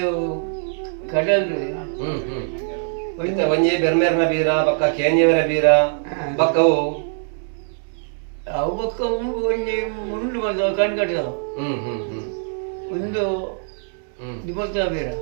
ಕಡಲ್ ಒಂಜಿ ಬೆರ್ಮೇರ್ನ ಬೀರ ಬಕ್ಕ ಕೇಂಜೆವರ ಬೀರ ಬಕ್ಕವು ಅವು ಬಕ್ಕ ಒಂಜಿ ಮುಂಡು ಬಂದವು ಕಣ್ಕಟ್ಟದವು ಒಂದು ದಿವಸ ಬೀರ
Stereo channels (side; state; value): left; silent; 59 dB below the other